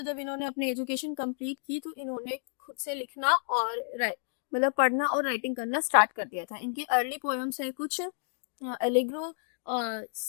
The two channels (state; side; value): silent; right; digital silence